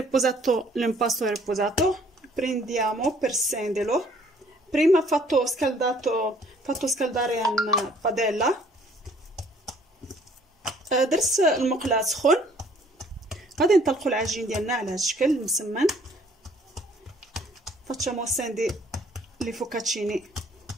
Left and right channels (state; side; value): normal; both; correlation 0.59